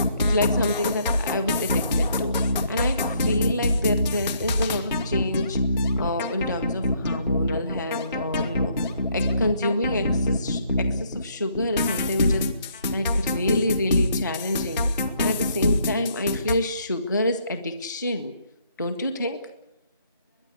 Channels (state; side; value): inverted; both; correlation -0.68